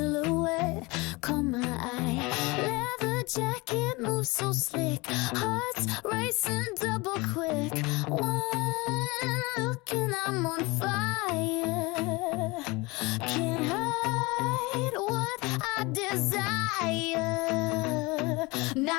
caught my eye. Leather jacket moves so slick, hearts racing double quick. One look and I'm on fire. Can't hide what I desire.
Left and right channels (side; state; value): right; quieter; 24.3 dB